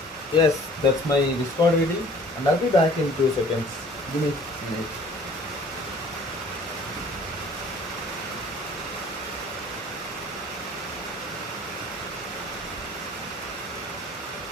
yes, that's my Discord ID, and I'll be back in 2 seconds. Give me a minute.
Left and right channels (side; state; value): both; normal; correlation 0.51